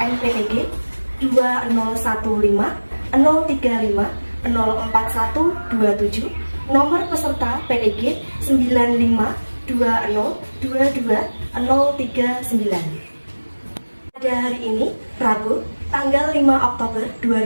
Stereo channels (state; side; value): inverted; both; correlation -1.00